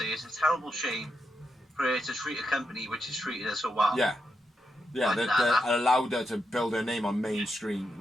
is it's a terrible shame for her to treat a company which has treated her so well. Yeah. Yeah, Like that allowed her to build her name on mainstream.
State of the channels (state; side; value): normal; both; correlation 0.85